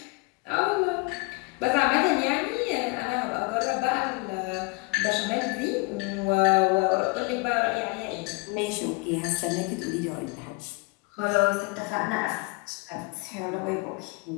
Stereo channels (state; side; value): quieter; right; 28.0 dB